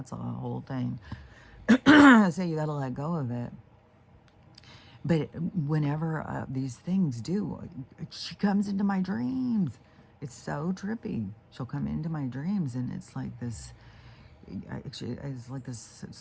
whole thing. So you got to let go of it. But whenever these things do, she comes into my dreams. It's so trippy. She'll come into my dreams, and it's like this. It's like this,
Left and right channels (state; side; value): identical; both; correlation 1.00